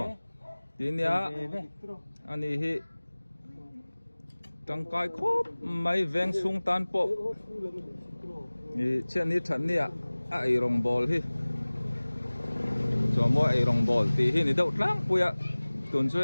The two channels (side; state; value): both; inverted; correlation -1.00